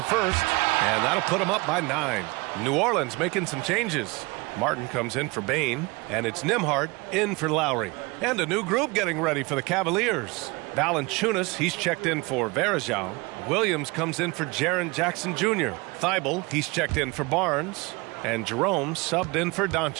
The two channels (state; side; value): quieter; left; 25.5 dB